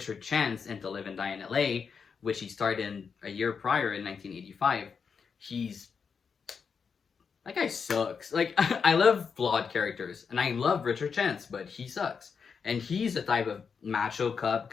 Chance in To Live and Die in LA, which he starred in a year prior in 1985, that guy sucks. Like, I love flawed characters, and I love Richard Chance, but he sucks. And he's the type of macho cop,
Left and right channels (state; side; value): quieter; right; 6.0 dB